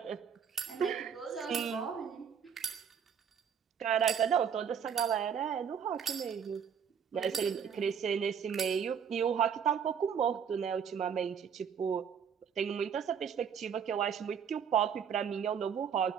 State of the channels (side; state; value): left; quieter; 7.5 dB